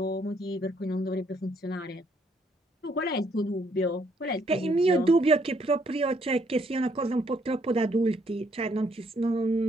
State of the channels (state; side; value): normal; both; correlation 0.69